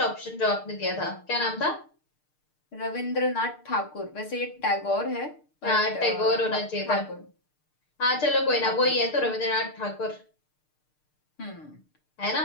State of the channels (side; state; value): right; late; 6.6 ms